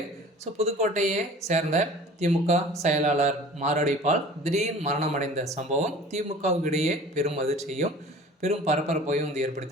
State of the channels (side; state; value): both; normal; correlation 0.44